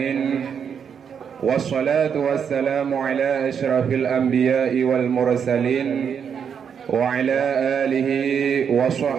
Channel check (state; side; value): quieter; left; 7.3 dB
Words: Wassalatu wassalamu ala asyrafil anbiya'i wal mursalin wa ala alihi wa